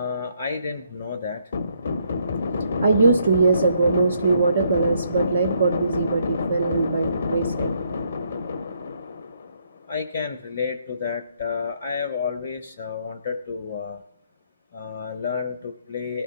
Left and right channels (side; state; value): both; inverted; correlation -0.71